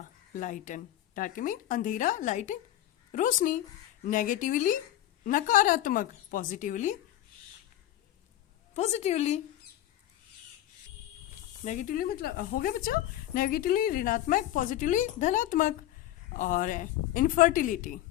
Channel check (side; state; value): right; quieter; 13.5 dB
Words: लाइटन। डार्किंग अंधेरा, लाइटन रोशनी। नेगेटिवली नकारात्मक, पॉजिटिवली पॉजिटिवली। नेगेटिवली मतलब हो गया बच्चों, नेगेटिवली ऋणात्मक, पॉजिटिवली धनात्मक। और इनफर्टिलिटी,